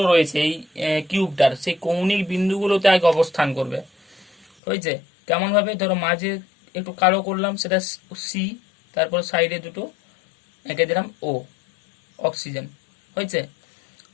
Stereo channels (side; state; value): right; drops out; at 4.5 s